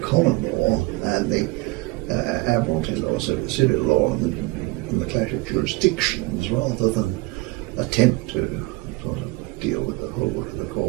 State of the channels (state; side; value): quieter; left; 22.2 dB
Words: law and the Admiralty law, so the civil law and the clash of jurisdictions rather than attempt to sort of deal with the whole work of the